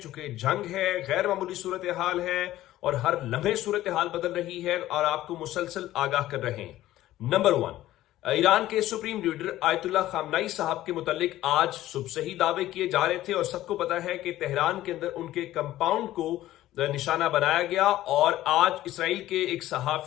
चूंकि जंग है, गैर मामूली सूरत हाल है और हर लम्हे सूरत हाल बदल रही है और आपको मुसलसल आगाह कर रहे हैं। नंबर 1, ईरान के सुप्रीम लीडर आयतुल्लाह खामनाई साहब के मुतालिक आज सुबह से ही दावे किए जा रहे थे और सबको पता है कि तेहरान के अंदर उनके कंपाउंड को निशाना बनाया गया और आज इसराइल के एक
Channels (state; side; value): quieter; right; 14.7 dB